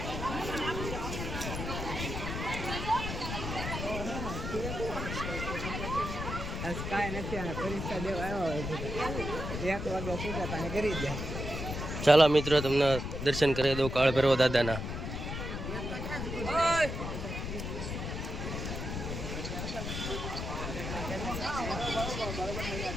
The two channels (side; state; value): left; noise; rumble, 5 dB below the sound